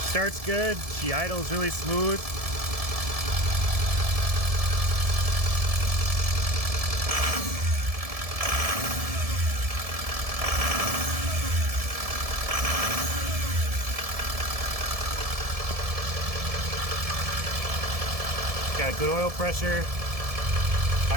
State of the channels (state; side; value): late; left; 1.7 ms